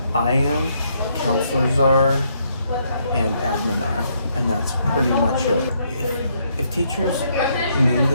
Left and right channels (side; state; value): both; inverted; correlation -0.73